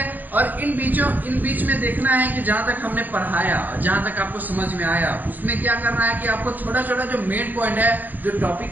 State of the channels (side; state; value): left; late; 0.085 ms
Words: और इन बीच में देखना है कि जहां तक हमने पढ़ाया, जहां तक आपको समझ में आया, उसमें क्या करना है कि आपको छोटा छोटा जो मेन पॉइंट है, जो टॉपिक